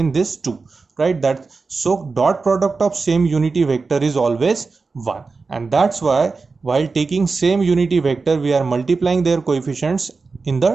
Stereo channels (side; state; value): left; quieter; 4.3 dB